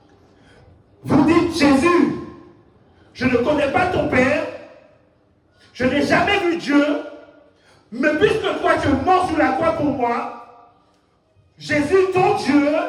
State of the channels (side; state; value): both; identical; correlation 1.00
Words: dites, Jésus, je ne connais pas ton Père, je n'ai jamais vu Dieu, mais puisque toi tu es mort sur la croix pour moi, Jésus, ton Dieu,